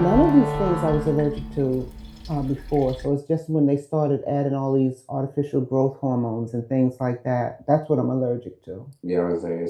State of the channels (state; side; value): identical; both; correlation 1.00